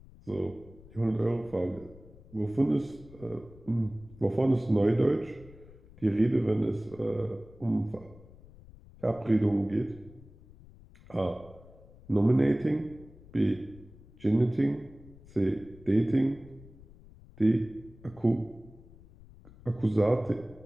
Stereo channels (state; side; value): noise; left; rumble, 21 dB below the sound